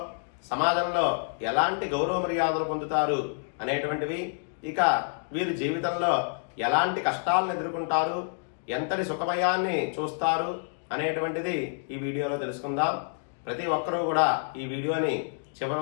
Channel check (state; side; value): silent; right; digital silence